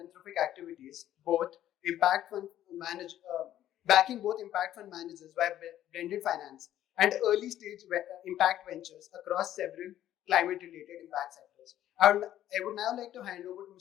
activities, backing both impact fund managers by blended finance and early stage impact ventures across several climate related impact sectors. I would now like to hand over to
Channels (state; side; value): quieter; right; 12.2 dB